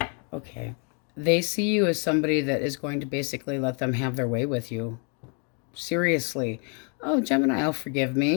Okay. They see you as somebody that is going to basically let them have their way with you. Seriously. Oh, Gemini, I'll forgive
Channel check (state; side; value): quieter; right; 38.8 dB